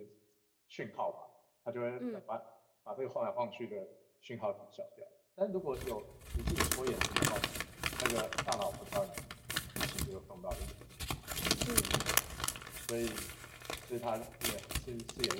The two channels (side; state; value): both; identical; correlation 1.00